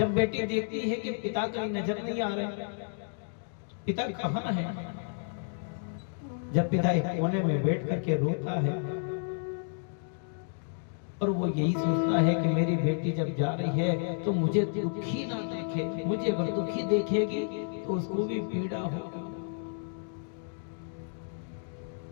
बेटी देखती है कि पिता कहीं नजर नहीं आ रहे, पिता कहाँ है, जब पिता एक कोने में बैठ करके रोता है और वो यही सोचता है कि मेरी बेटी जब जा रही है तो मुझे दुखी ना देखे, मुझे अगर दुखी देखेगी तो उसको भी पीड़ा होगी।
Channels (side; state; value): right; silent; digital silence